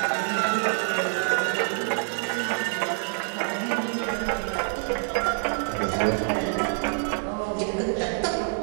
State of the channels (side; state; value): left; silent; 61 dB below the other